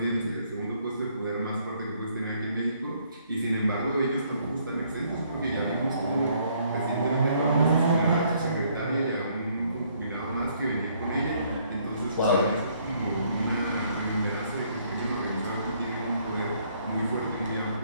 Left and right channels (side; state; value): both; inverted; correlation -0.67